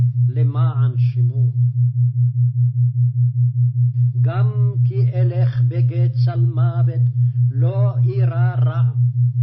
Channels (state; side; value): identical; both; correlation 1.00